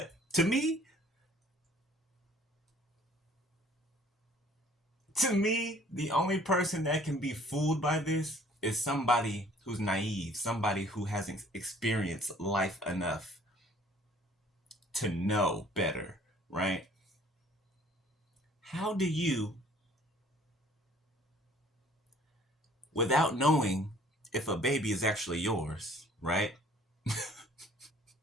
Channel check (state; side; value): normal; both; correlation 0.55